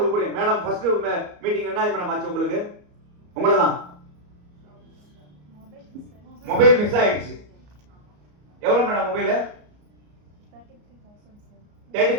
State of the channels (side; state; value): left; late; 34 ms